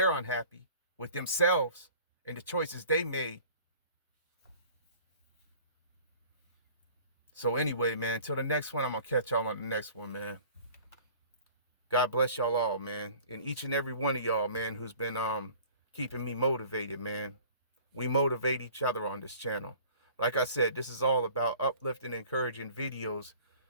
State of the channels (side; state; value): both; inverted; correlation -0.48